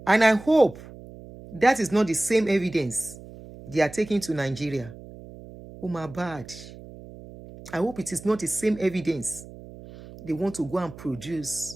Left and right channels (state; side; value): noise; right; hum, 17 dB below the sound